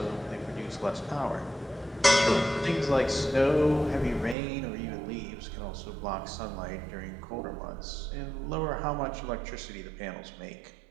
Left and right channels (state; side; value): drops out; left; at 4.4 s